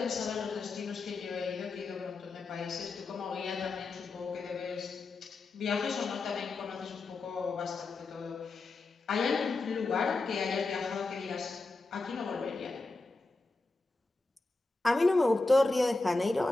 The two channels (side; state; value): right; quieter; 3.4 dB